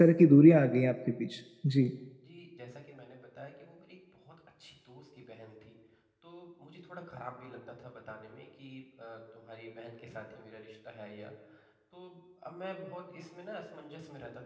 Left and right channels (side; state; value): both; identical; correlation 1.00